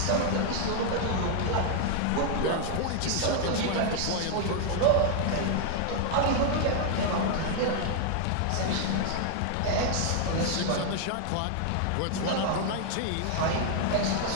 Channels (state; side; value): different; both; correlation 0.00